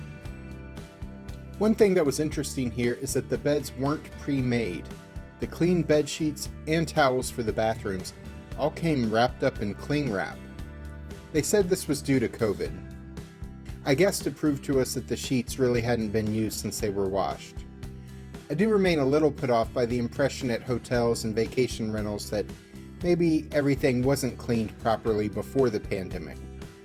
One thing that was interesting here is that the beds weren't pre-made. The clean bed sheets and towels for the bathrooms all came wrapped up in cling wrap. They said this was due to COVID. I guess to prove to us that the sheets really hadn't been used since they were washed. I do remain a little put off by the impression at hotels and vacation rentals that maybe everything wasn't cleaned properly before the pandemic.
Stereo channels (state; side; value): identical; both; correlation 1.00